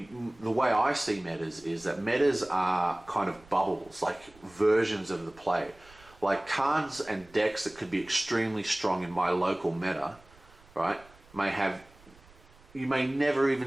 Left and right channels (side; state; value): right; noise; rumble, 26 dB below the sound